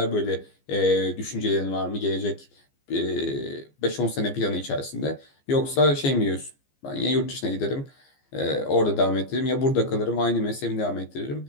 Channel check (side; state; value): right; late; 15 ms